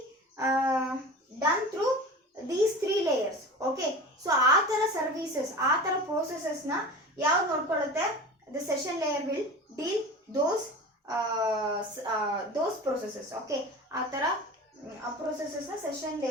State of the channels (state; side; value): normal; both; correlation 0.34